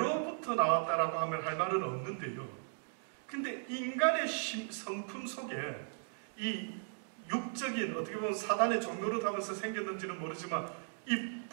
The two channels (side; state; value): left; silent; digital silence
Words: 나왔다라고 하면 할 말은 없는데요. 근데 인간의 성품 속에 이 육적인, 어떻게 보면 사단의 종로를 하면서 생겼는지는 모르지만 이